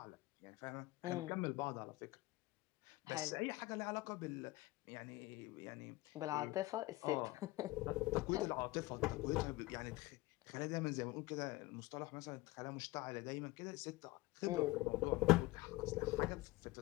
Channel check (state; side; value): quieter; right; 19.9 dB